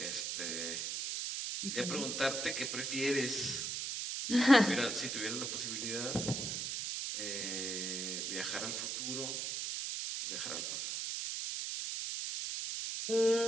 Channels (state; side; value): noise; right; hiss, 2 dB below the sound